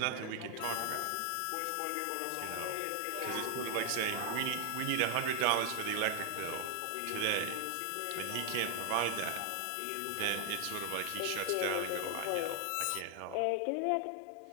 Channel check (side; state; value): both; different; correlation 0.00